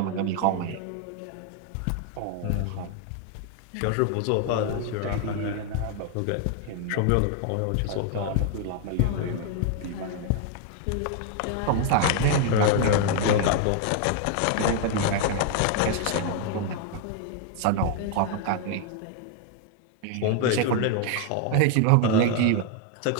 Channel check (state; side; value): different; both; correlation 0.00